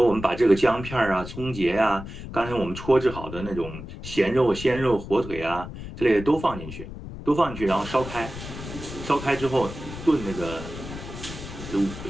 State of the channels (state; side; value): noise; left; rumble, 11 dB below the sound